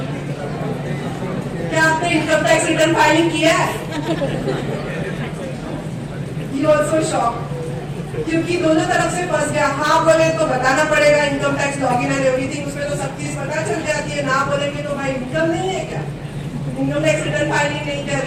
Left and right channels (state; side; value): identical; both; correlation 1.00